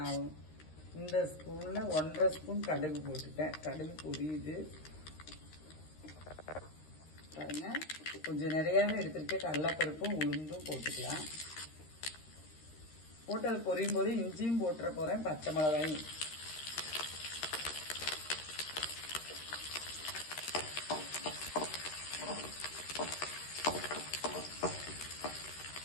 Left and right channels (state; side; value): late; right; 13 ms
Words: இந்த ஸ்பூனில் 1.5 ஸ்பூன் கடுகு போட்டுட்டேன். கடுகு பொரியுது பாருங்க. கொஞ்சம் நிறையாவே எடுத்திருக்கேன். கடலைப்பருப்பும் உளுந்தும் போட்டுக்கலாம். போட்டு அது பொரியும் போது இஞ்சியும் போட்டுற போகிறேன், பச்சை மிளகாயும்.